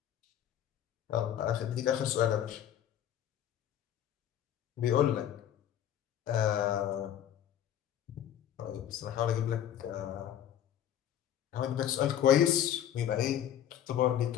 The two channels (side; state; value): right; quieter; 10.6 dB